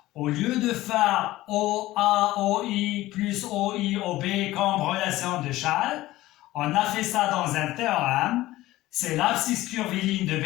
au lieu de faire OA, OI plus OI, OB comme relation de Chasles, on a fait ça dans un théorème. C'est l'abscisse curviligne de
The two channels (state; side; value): quieter; right; 16.8 dB